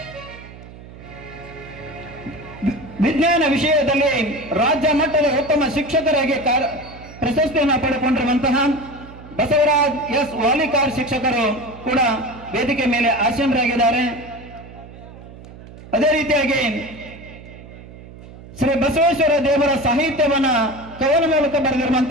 ವಿಜ್ಞಾನ ವಿಷಯದಲ್ಲಿ ರಾಜ್ಯ ಮಟ್ಟದ ಉತ್ತಮ ಶಿಕ್ಷಕರಾಗಿ ಪ್ರಶಸ್ತಿಯನ್ನು ಪಡೆದುಕೊಂಡಿರುವಂತಹ ಬಸವರಾಜ್ ಎಸ್ ವಾಲಿಕಾರ್ ಶಿಕ್ಷಕರು ಕೂಡ ವೇದಿಕೆ ಮೇಲೆ ಆಸೀನರಾಗಿದ್ದಾರೆ. ಅದೇ ರೀತಿಯಾಗಿ ಶ್ರೀ ಬಸವೇಶ್ವರ ದೇವರ ಸಾಹಿತ್ಯವನ್ನ ಕವನ ಮೂಲಕ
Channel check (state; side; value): noise; right; hum, 17 dB below the sound